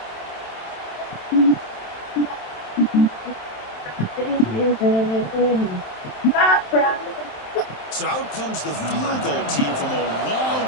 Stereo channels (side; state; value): right; late; 27 ms